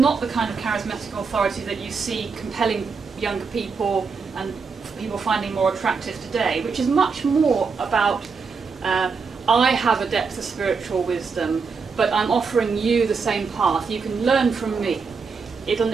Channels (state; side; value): quieter; left; 5.1 dB